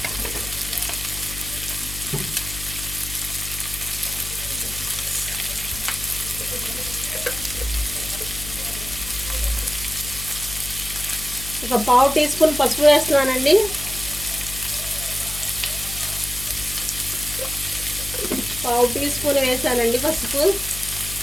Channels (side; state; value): left; noise; hum, 10 dB below the sound